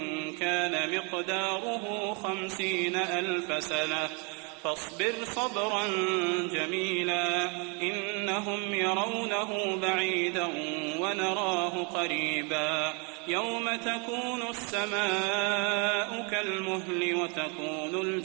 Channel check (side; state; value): left; quieter; 34.0 dB